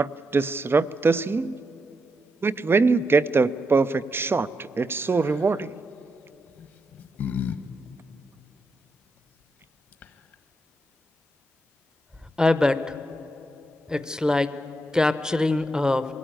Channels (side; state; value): both; normal; correlation 0.83